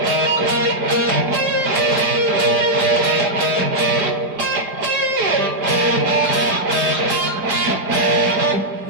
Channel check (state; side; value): late; left; 4.9 ms